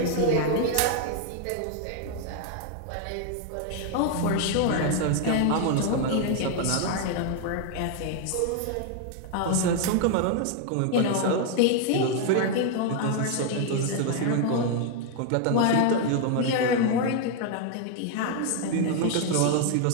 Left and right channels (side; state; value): both; different; correlation 0.00